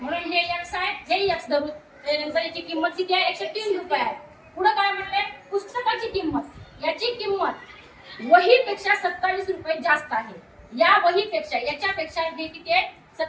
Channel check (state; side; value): identical; both; correlation 1.00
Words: हे एक्स आहे, हे एक्स धरू. त्यानंतर याची किंमत किती आहे, 103 रुपये आहे. पुढे काय म्हणले? पुस्तकाची किंमत, याची किंमत वहीपेक्षा 27 रुपये जास्त आहे. या वहीपेक्षा याच्यापेक्षा हे किती आहे,